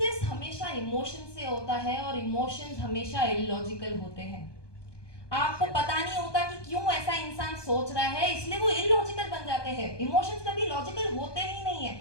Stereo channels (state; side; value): late; right; 1.2 ms